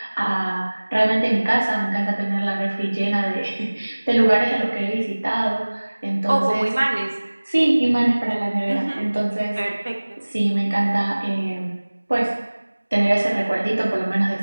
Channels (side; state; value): both; inverted; correlation -1.00